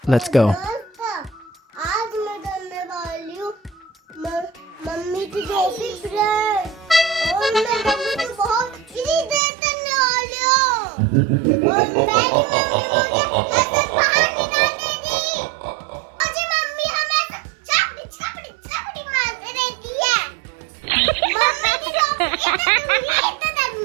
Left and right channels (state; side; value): drops out; left; at 9.4 s